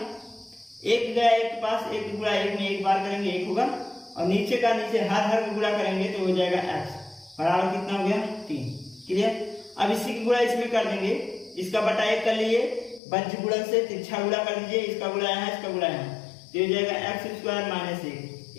1 गया 1 के पास, 1 गुणा 1 में 1 बार करेंगे 1 होगा और नीचे का नीचे हर का गुणा करेंगे तो हो जाएगा x बराबर कितना हो गया 3, क्लियर। अब इसी की गुणा इसमें कर देंगे, इसका बटा 1 कर लिए, बज्र गुणन से तिरछा गुणा कर दीजिए, इसका गुणा यहाँ, इसका गुणा यहाँ, तो हो जाएगा x² माइनस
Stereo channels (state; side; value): drops out; right; at 13.0 s